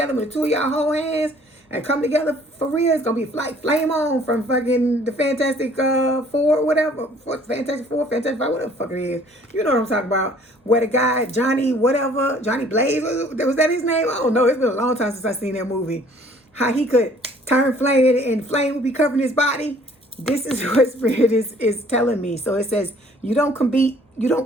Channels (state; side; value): normal; both; correlation 0.56